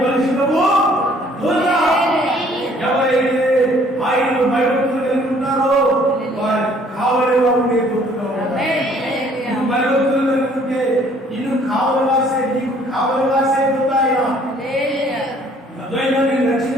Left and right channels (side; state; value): both; normal; correlation 0.59